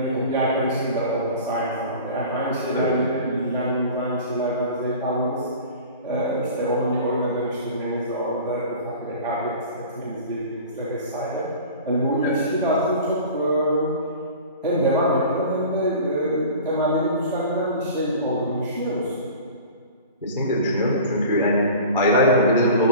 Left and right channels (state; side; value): inverted; both; correlation -0.40